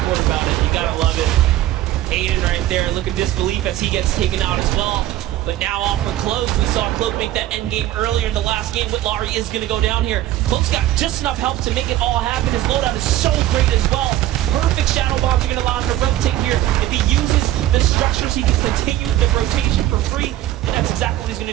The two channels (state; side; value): quieter; left; 14.1 dB